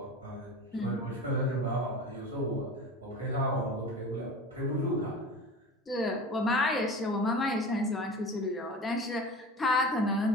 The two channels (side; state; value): both; normal; correlation 0.34